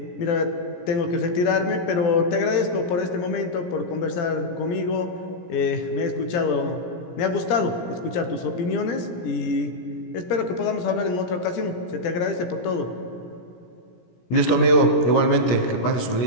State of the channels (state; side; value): late; right; 17 ms